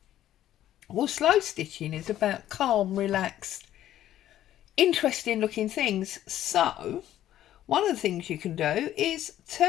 Well, slow stitching is about calm, relaxed, interesting looking things. So one of the things you can do is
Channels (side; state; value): right; quieter; 12.5 dB